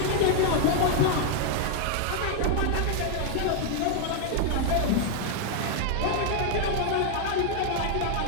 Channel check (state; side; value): different; both; correlation 0.00